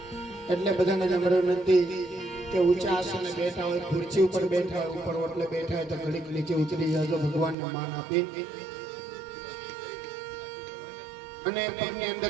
એટલે બધાને નમ્ર વિનંતી કે ઊંચા આસને બેઠા હોય, ખુરશી ઉપર બેઠા હોય, ઉપર ઓટલે બેઠા હોય તો ઘડીક નીચે ઉતરી જાજો, ભગવાનને માન આપી અને પગની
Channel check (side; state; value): left; drops out; at 7.6 s